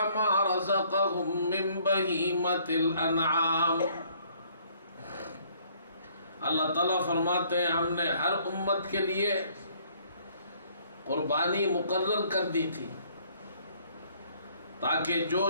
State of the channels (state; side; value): inverted; both; correlation -0.62